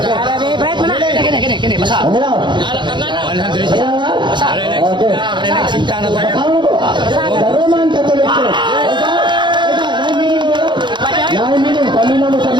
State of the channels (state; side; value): late; left; 0.23 ms